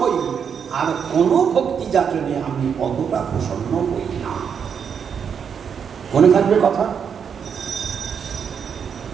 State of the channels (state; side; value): quieter; left; 7.2 dB